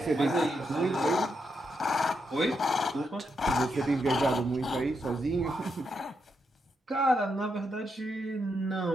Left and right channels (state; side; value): normal; both; correlation 0.81